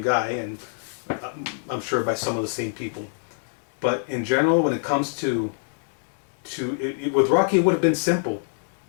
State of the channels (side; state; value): right; silent; digital silence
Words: guy, and I'm sure by some of the same people. But in general, when it comes to with Rocky, it would have been simple.